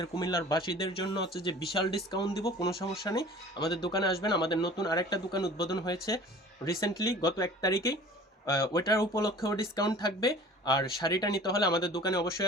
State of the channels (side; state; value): both; normal; correlation 0.45